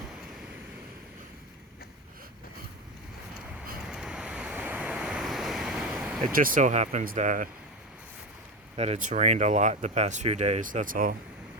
it just so happens that that it's rained a lot the past few days, that's all.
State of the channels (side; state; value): both; normal; correlation 0.17